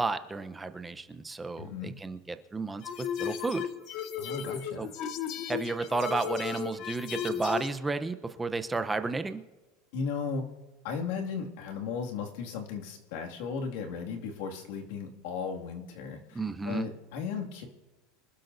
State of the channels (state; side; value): normal; both; correlation 0.61